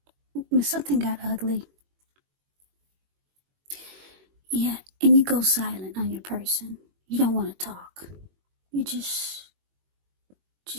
got ugly. Yeah, and you go silent on your person. You don't want to talk. You just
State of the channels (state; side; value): late; left; 21 ms